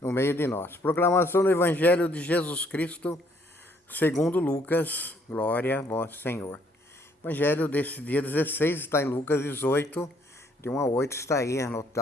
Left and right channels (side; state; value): both; normal; correlation 0.66